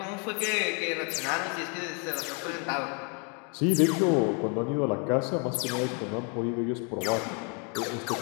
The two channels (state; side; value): quieter; right; 36.5 dB